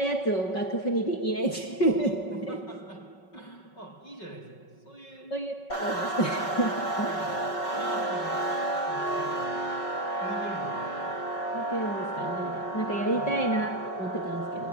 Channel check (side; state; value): right; late; 5.3 ms